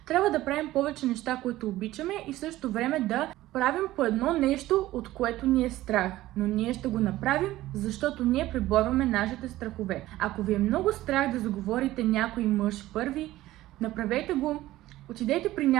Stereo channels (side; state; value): left; quieter; 16.0 dB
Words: Трябва да правим повече неща, които обичаме и в същото време да правим по едно нещо, от което ни е страх. Но ние ще го направим, защото ние преборваме нашите страхове. Ако ви е много страх да заговорите някой мъж първи, направете го. Отидете при